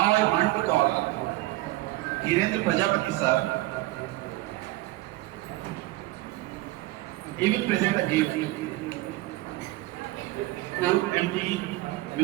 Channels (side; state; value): left; quieter; 18.6 dB